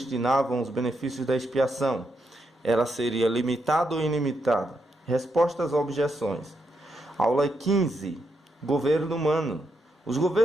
os benefícios da expiação? Ela seria limitada ou ilimitada? Respostas a objeções. Aula 15. Governo humano. Os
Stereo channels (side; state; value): both; normal; correlation 0.81